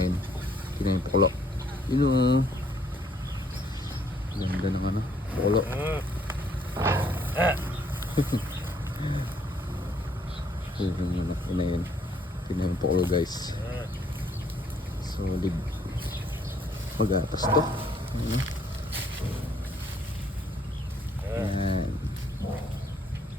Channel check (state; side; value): normal; both; correlation 0.66